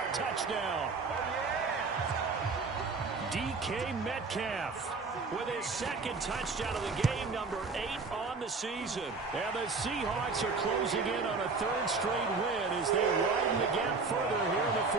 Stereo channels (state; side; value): quieter; left; 4.2 dB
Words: touchdown. DK Metcalf with his 2nd touchdown of the game, number 8 on the season. And the Seahawks are closing in on a 3rd straight win as they widen the gap further here in the